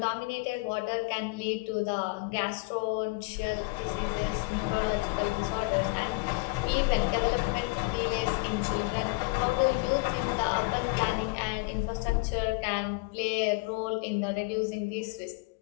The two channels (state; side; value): quieter; right; 25.7 dB